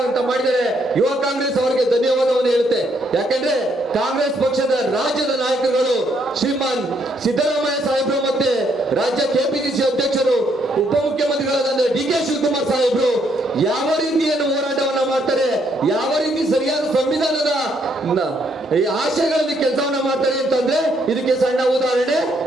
ಮಾಡಿದರೆ ಯುವ ಕಾಂಗ್ರೆಸ್ ಅವರಿಗೆ ಧನ್ಯವಾದವನ್ನು ಹೇಳುತ್ತೆ. ಯಾಕಂದ್ರೆ ಕಾಂಗ್ರೆಸ್ ಪಕ್ಷದ ರಾಜ್ಯದ ನಾಯಕರುಗಳು ಶ್ರೀಮಾನ್ ಸಿದ್ದರಾಮಯ್ಯ ಸಾಹೇಬರು ಮತ್ತೆ ರಾಜ್ಯ ಕೆಪಿಸಿಸಿ ಅಧ್ಯಕ್ಷರು ಉಪಮುಖ್ಯಮಂತ್ರಿಗಳಾದ DK ಶಿವಕುಮಾರ್ ಸಾಹೇಬರು ಯಾವ ರೀತಿಯನ್ನು ಹೋರಾಟವನ್ನ ಮಾಡ್ತಾರೆ, ಯಾವ ರೀತಿ ಸರಿಯಾದ ಸಂವಿಧಾನದ ಆಶಯಗಳಲ್ಲಿ ಕೆಲಸವನ್ನ ಮಾಡ್ತಾರೆ ಅಂತಂದ್ರೆ ಇದಕ್ಕೆ ಸಣ್ಣ ಉದಾಹರಣೆ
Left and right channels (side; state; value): both; normal; correlation 0.71